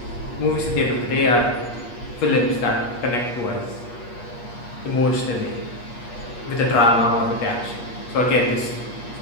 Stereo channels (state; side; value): late; right; 8.4 ms